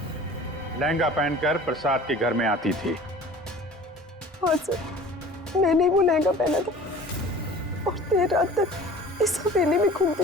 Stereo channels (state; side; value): normal; both; correlation 0.44